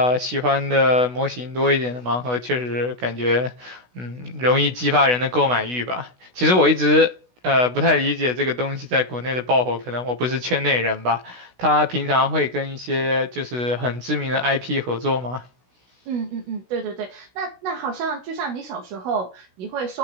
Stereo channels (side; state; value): left; late; 16 ms